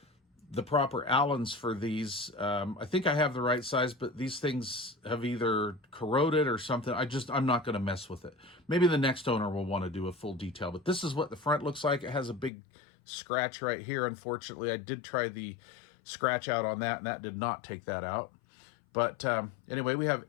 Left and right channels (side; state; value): right; drops out; at 12.5 s